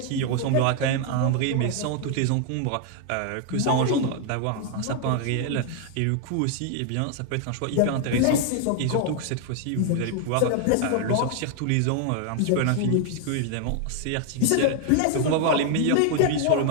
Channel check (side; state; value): both; different; correlation 0.00